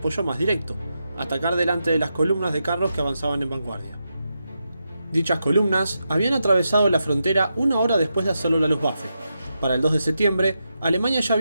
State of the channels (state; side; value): inverted; both; correlation -0.86